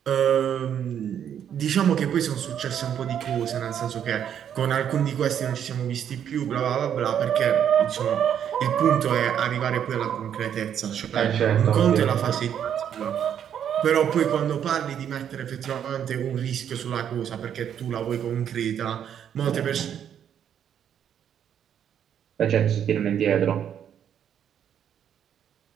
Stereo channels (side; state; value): left; quieter; 9.1 dB